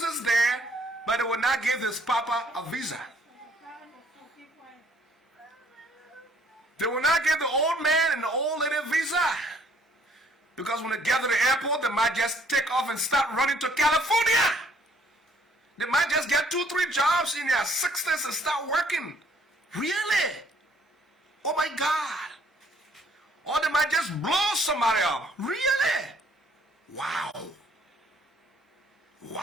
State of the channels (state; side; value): normal; both; correlation 0.62